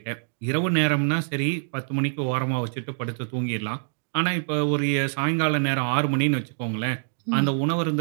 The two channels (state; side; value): silent; left; digital silence